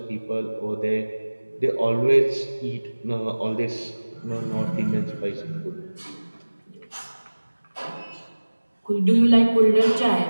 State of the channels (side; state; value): both; inverted; correlation -1.00